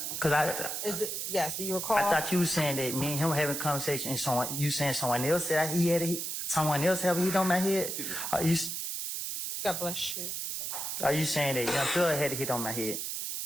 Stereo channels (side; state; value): right; noise; hiss, 3 dB below the sound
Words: yes, do you recall? I thought you were saying that me and him having a conversation and you saying someone else said he had someone else have a hit on my head? God bless you. Are you saying that Young Thug had a hit on my head?